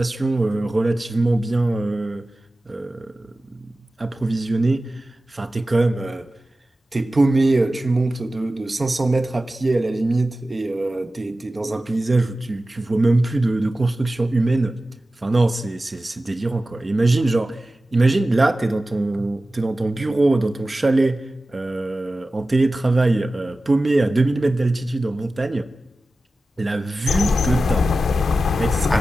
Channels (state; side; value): normal; both; correlation 0.95